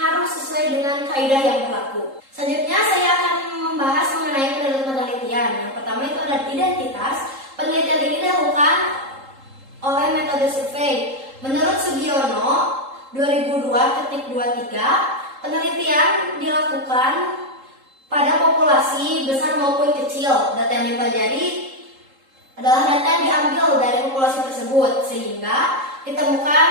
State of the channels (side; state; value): left; late; 3.8 ms